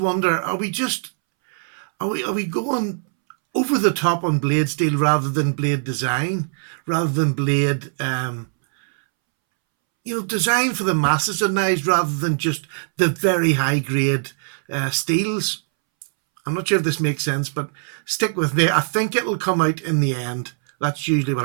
are we going over the top on blade steel rather than blade design, rather than blade design for the masses of knives rather than just the very high grade steels? I'm not sure if this makes sense, but stick with me. I think it'll come out in the end. That's usually what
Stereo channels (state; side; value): silent; left; 65 dB below the other